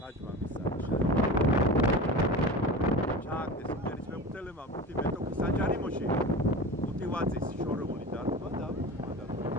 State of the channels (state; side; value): normal; both; correlation 0.32